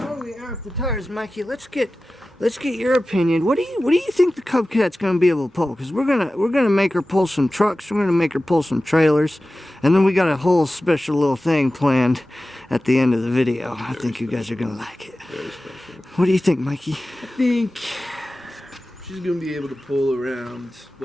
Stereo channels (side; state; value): both; normal; correlation 0.95